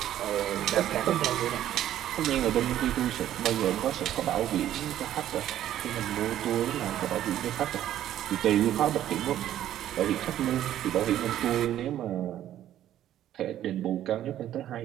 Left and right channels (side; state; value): left; quieter; 12.1 dB